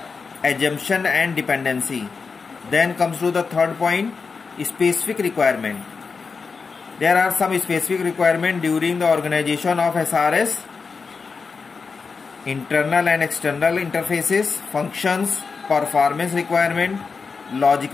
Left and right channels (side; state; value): right; quieter; 4.9 dB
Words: assumption and dependency. Then comes to the third point, specific requirement. There are some specific requirements during the organization of SRS. Internal and external interfaces, functions, performance requirement,